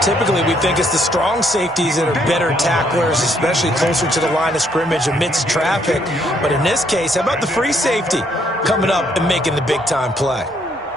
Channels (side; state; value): both; normal; correlation 0.69